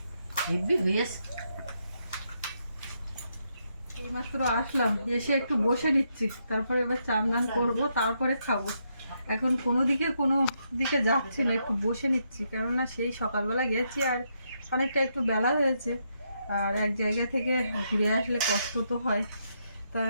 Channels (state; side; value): inverted; both; correlation -0.79